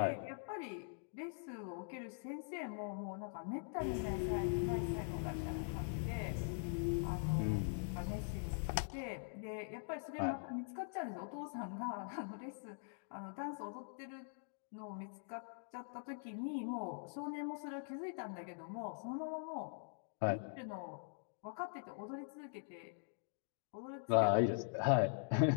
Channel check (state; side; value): silent; right; digital silence